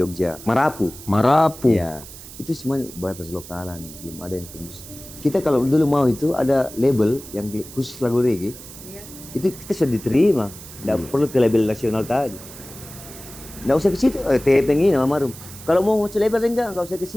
Marapu. Ya, itu semua batas lokalan, belum ada yang tembus. Kita kalau dulu mau itu ada label yang khusus lagu reggae, Iya. itu kita sudah diterima. Nggak perlu ke label nasional tadi. Nggak usah ke situ, TPNG nama Marum. Kalau mau ke label nggak usah ke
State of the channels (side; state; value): right; noise; hiss, 16 dB below the sound